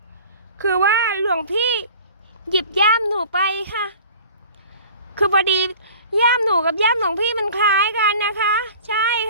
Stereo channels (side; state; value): both; inverted; correlation -0.45